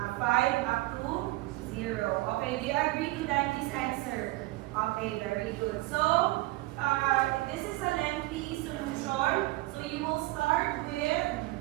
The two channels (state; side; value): quieter; left; 20.2 dB